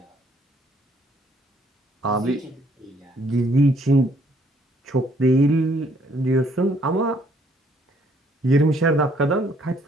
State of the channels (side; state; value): both; normal; correlation 0.65